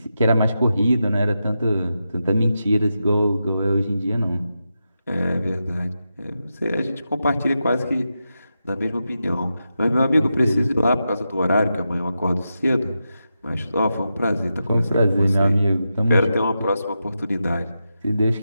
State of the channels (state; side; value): inverted; both; correlation -0.88